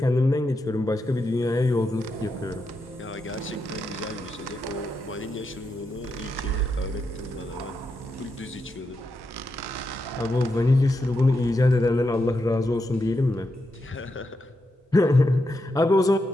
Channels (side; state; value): both; normal; correlation 0.85